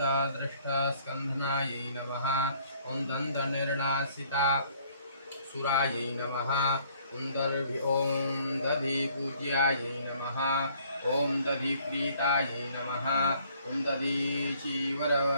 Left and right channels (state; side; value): inverted; both; correlation -0.61